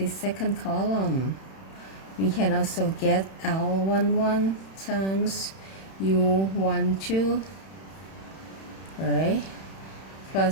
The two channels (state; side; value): late; right; 31 ms